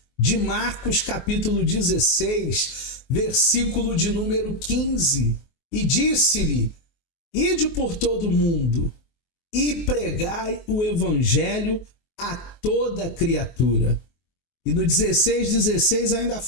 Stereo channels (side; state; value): right; late; 23 ms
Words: de Marcos capítulo 16, versículo de número 15. E disse-lhe: ide por todo o mundo e pregai o evangelho a toda criatura. E no 16 ainda